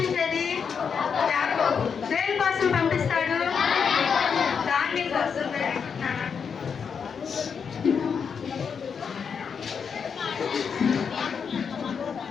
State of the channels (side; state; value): right; quieter; 6.4 dB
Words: యాకోబు. దేని కోసం పంపిస్తాడు? ధాన్యం కోసం.